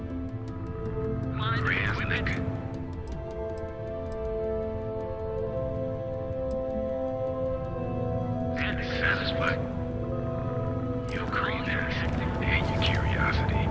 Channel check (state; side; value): identical; both; correlation 1.00